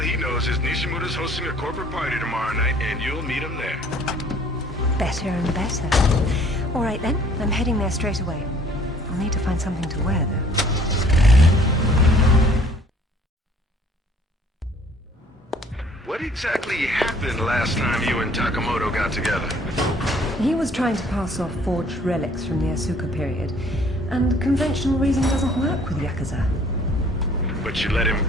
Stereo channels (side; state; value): both; normal; correlation 0.57